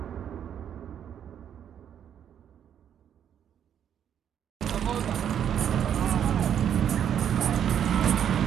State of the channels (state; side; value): quieter; left; 9.2 dB